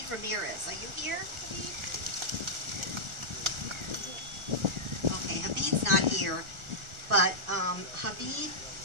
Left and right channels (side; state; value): left; late; 1.4 ms